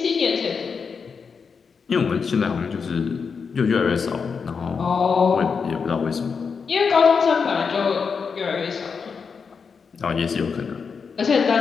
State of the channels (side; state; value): right; quieter; 5.7 dB